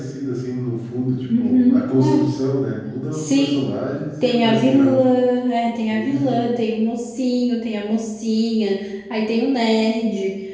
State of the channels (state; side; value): identical; both; correlation 1.00